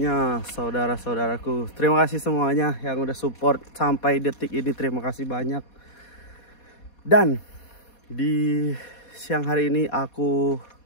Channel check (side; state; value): right; late; 4.2 ms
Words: saudara-saudaraku. Terima kasih semuanya yang udah support sampai detik ini. Terima kasih banyak. Dan di siang hari ini aku